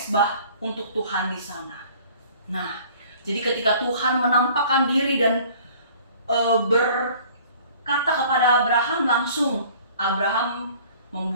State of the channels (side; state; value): both; inverted; correlation -0.51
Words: untuk Tuhan di sana. Nah, jadi ketika Tuhan menampakkan diri dan berkata kepada Abraham, langsung Abraham